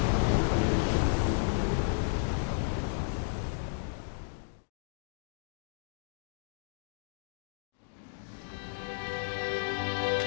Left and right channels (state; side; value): silent; right; digital silence